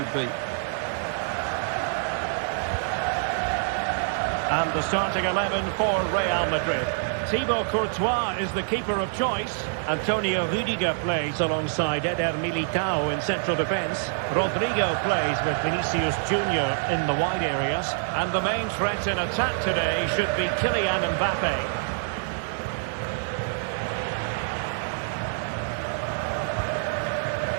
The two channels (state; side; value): silent; left; 61 dB below the other